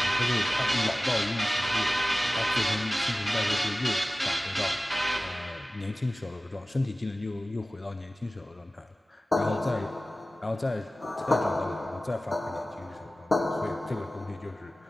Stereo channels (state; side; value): normal; both; correlation 0.97